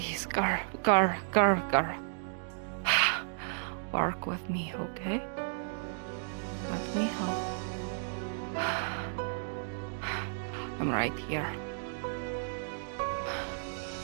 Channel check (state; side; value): silent; left; digital silence